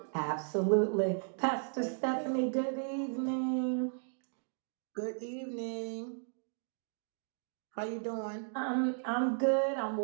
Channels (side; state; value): left; silent; digital silence